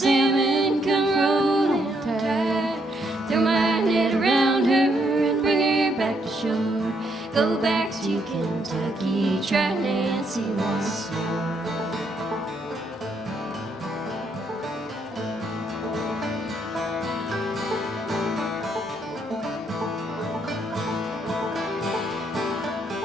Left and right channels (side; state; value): both; normal; correlation 0.74